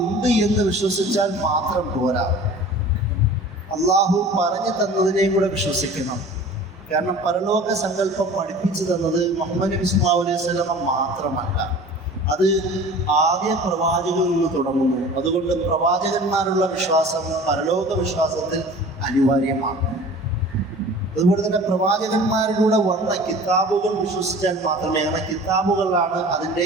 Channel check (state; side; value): normal; both; correlation 0.42